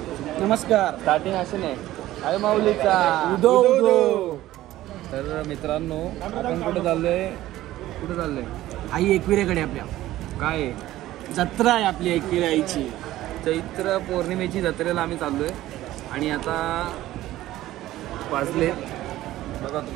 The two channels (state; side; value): quieter; left; 15.1 dB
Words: Starting असे नाही आहे माऊलीचा उदो उदो. तर मित्रांनो, आपण कुठे चाललोय? आई एकविरेकडे. आपल्या काय जत्रा आहे आपली एकविरा आईची. चैत्र पौर्णिमेची जत्रेला आम्ही चाललोय. आणि आता वाजले बघा